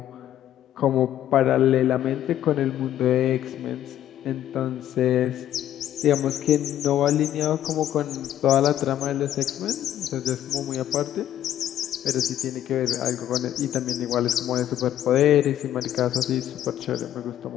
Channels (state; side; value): quieter; right; 11.7 dB